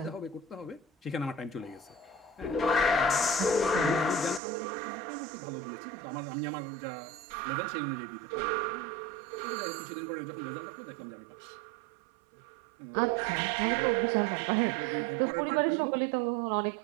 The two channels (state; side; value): drops out; left; at 4.4 s